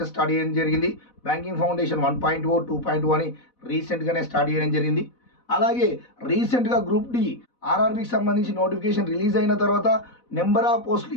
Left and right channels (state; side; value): late; right; 4.1 ms